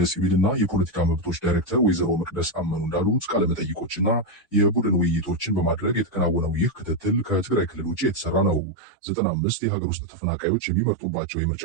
የፖለቲካ መብቶች ዳይሬክተር ወይዘሮ መቅደስ አመኑ እንዳሉት ቃለመጠይቆችና የቡድን ውይይቶችን በማድረግ የተከናወነው ይህ ክትትል ከትግራይ ክልል ውጭ የተሰራ ነው። 95 የሀገር ውስጥ ተፈናቃዮች የሚመርጡባቸው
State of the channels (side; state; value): left; drops out; at 8.6 s